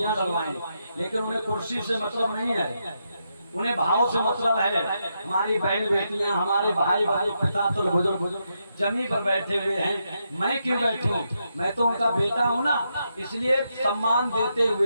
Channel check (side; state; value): both; inverted; correlation -0.82